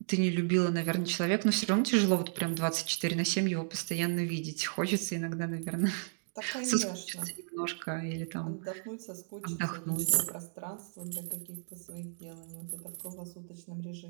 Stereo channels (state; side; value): silent; left; digital silence